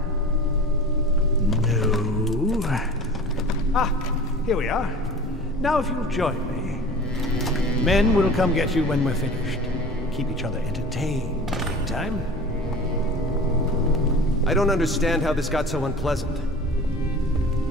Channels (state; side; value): noise; left; hum, 17 dB below the sound